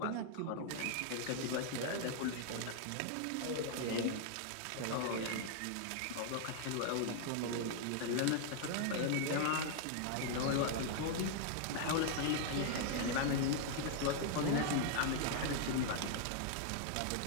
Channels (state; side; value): different; both; correlation 0.00